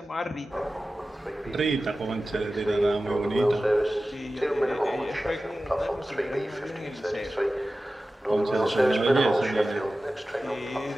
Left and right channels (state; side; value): normal; both; correlation 0.95